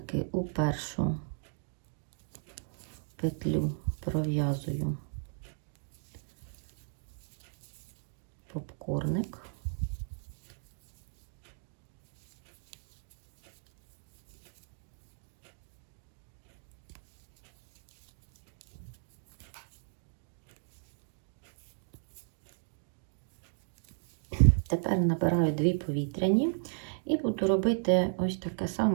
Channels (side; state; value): left; silent; digital silence